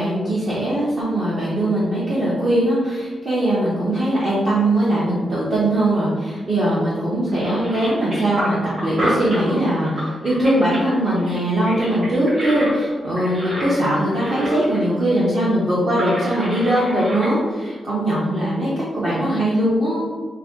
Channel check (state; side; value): normal; both; correlation 0.79